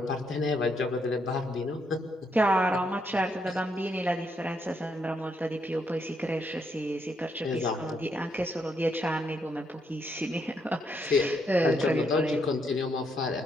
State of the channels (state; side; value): normal; both; correlation 0.76